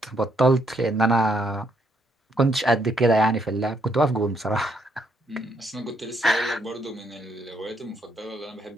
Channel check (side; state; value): both; normal; correlation 0.73